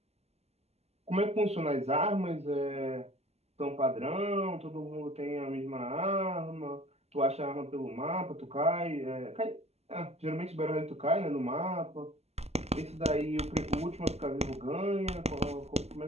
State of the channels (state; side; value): late; left; 0.30 ms